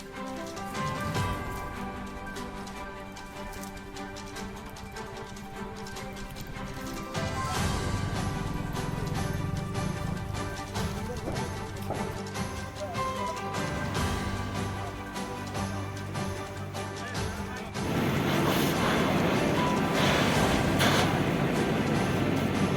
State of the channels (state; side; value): identical; both; correlation 1.00